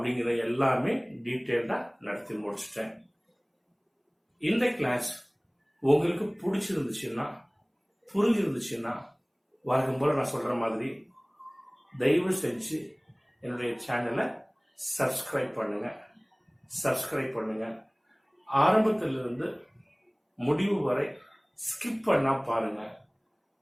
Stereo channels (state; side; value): identical; both; correlation 1.00